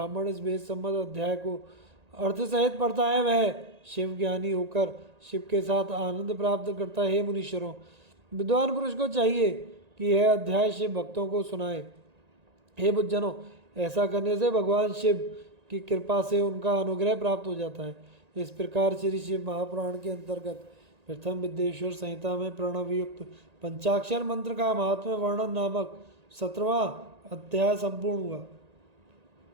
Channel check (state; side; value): late; left; 1.9 ms